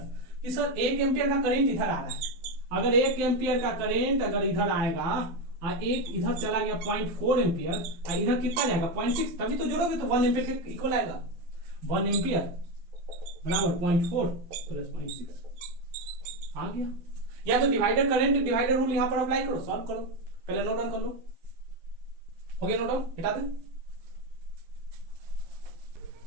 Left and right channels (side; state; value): left; late; 12 ms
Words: कि सर 1 एम्पियर का करंट इधर आ रहा है, अगर 1 एम्पियर का करंट अगर इधर आएगा और एक इधर चला गया 0.4 एम्पियर और इधर कितना जाएगा 0.6, तभी तो जोड़ोगे तो 1 एम्पियर के इक्वल आएगा। 1 एम्पियर बराबर 0.4 प्लस 0.6 आ गया। या तो डिवाइडर करंट डिवाइडर रूल यहां पर अप्लाई करो, सॉल्व करो, पहले नोट डाउन कर लो। हो गया नोट डाउन, हटा दे।